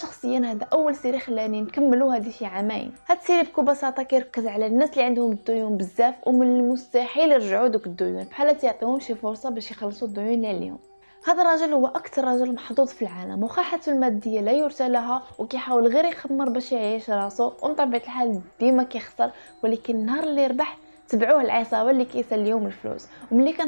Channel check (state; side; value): inverted; both; correlation -1.00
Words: هذا اول سيري خلاني نكملو هذه شي عامين. هاد السيري بكل بساطه كيركز على الناس اللي عندهم الديون بزاف ومن المستحيل يرجعوا دوك الديون، بحال تعطيهم شي فرصه باش يخلصوا الديون اللي عليهم. هذا الرجل هو اكثر رجل محظوظ في العالم، وخا حالته الماديه لا يرثى لها وكيحاول غير يخمر باش يعيش راسو، ومن طبيعه الحال ديما كيخسر. ولكن النهار اللي ربح تبعوه العصابه اللي كيساليهم الفلوس، وملي كان